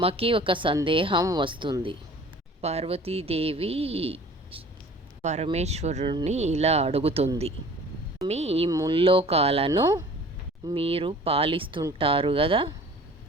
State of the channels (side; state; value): both; normal; correlation 0.47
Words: ఒక సందేహం వస్తుంది. పార్వతీదేవి పరమేశ్వరుణ్ణి ఇలా అడుగుతుంది. స్వామి, ఈ ముల్లోకాలను మీరు పాలిస్తుంటారు కదా,